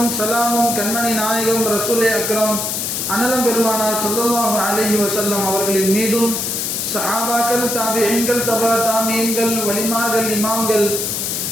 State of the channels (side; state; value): left; noise; hiss, 2 dB below the sound